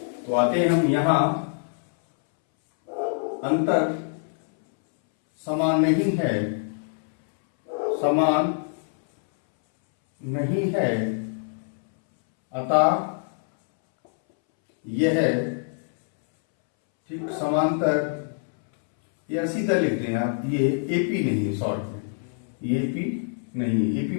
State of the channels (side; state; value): right; silent; 62 dB below the other